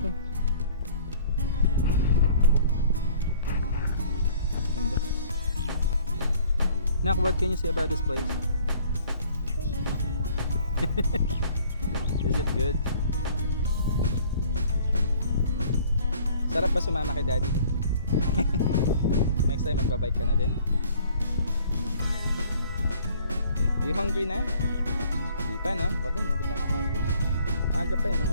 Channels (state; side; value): inverted; both; correlation -0.55